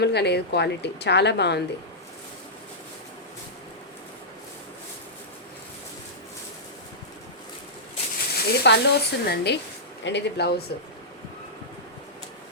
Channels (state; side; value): normal; both; correlation -0.13